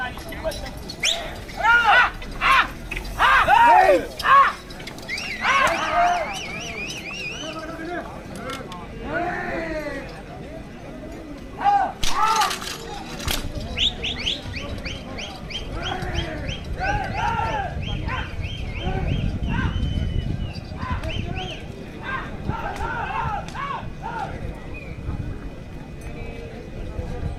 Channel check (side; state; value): both; identical; correlation 1.00